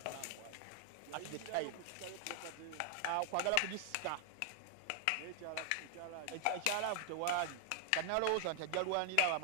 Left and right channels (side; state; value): both; different; correlation 0.00